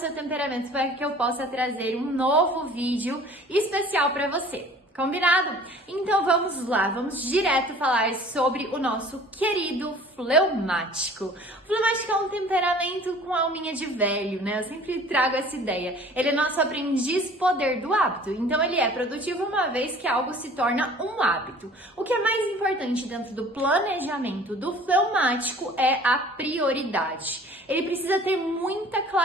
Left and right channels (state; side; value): normal; both; correlation 0.48